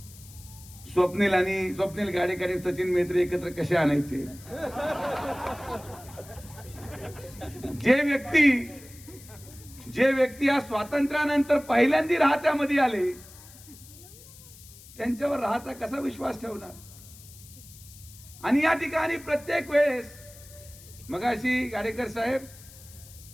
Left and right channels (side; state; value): left; noise; hiss, 20 dB below the sound